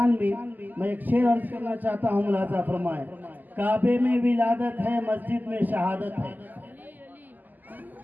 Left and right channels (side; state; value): left; late; 0.085 ms